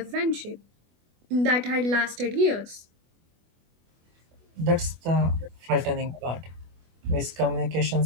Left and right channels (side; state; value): left; late; 24 ms